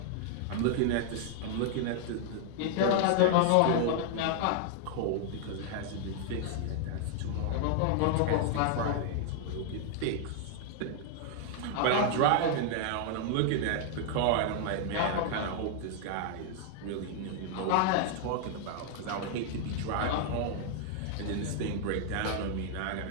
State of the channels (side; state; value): both; different; correlation 0.00